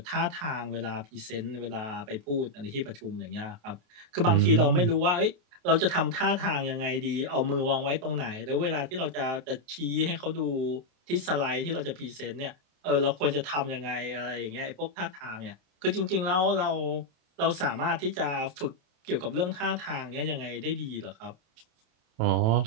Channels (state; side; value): late; left; 28 ms